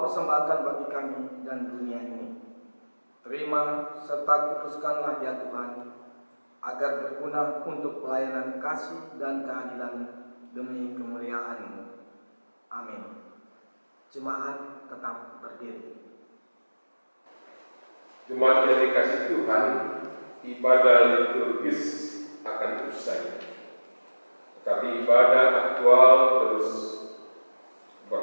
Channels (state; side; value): inverted; both; correlation -1.00